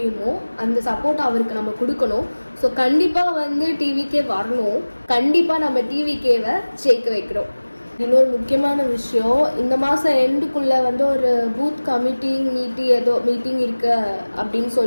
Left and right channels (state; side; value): inverted; both; correlation -1.00